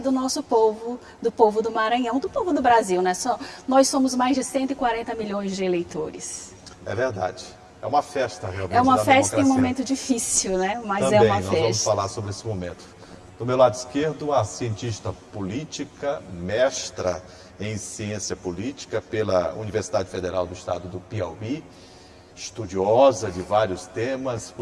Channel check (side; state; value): both; identical; correlation 1.00